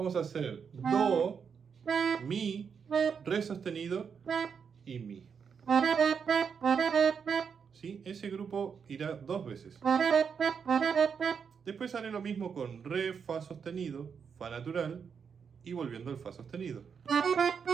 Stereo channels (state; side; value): quieter; left; 6.5 dB